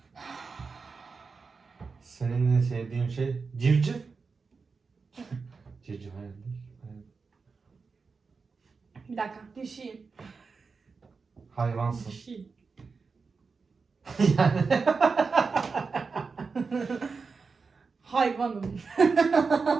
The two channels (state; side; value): quieter; left; 4.8 dB